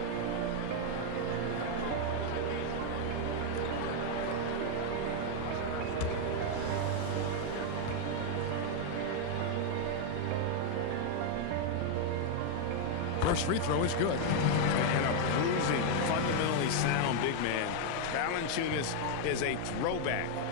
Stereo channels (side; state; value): both; different; correlation 0.00